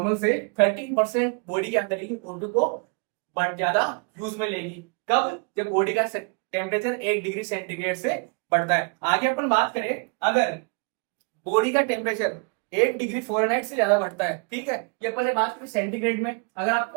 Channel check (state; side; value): quieter; left; 35.0 dB